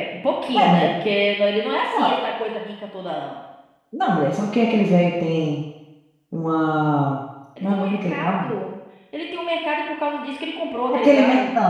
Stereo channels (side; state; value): both; identical; correlation 1.00